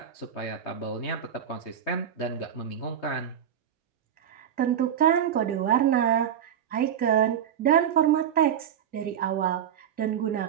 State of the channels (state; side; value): quieter; left; 8.9 dB